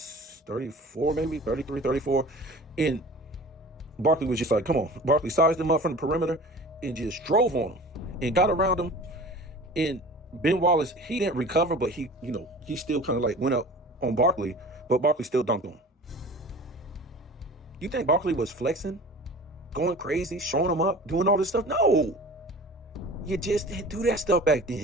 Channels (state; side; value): normal; both; correlation 0.41